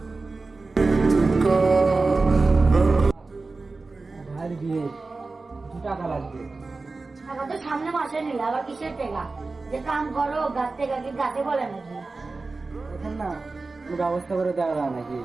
ভাইয়ের বিয়ে, 2 টাকা লাগবে। টাকা তো সামনে মাসে নিলে, আবার কিসের টাকা? যে কাম করো গাছ থেকে কি গাছে বলে নাকি? এখন না কোনো ব্যবস্থা করে দেওয়া যায় নাকি?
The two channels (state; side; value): quieter; left; 3.7 dB